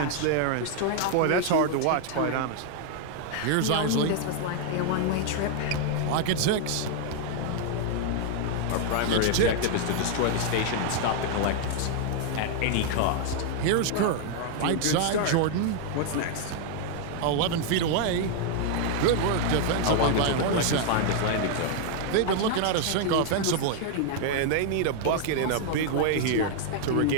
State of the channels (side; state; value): both; different; correlation 0.00